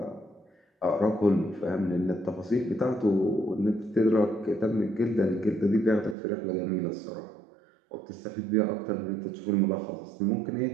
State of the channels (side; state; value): left; drops out; at 6.2 s